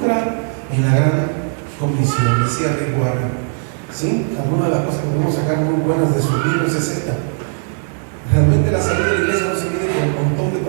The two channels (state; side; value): silent; left; digital silence